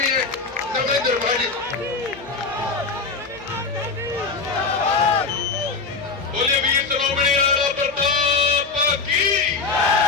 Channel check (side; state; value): right; quieter; 4.4 dB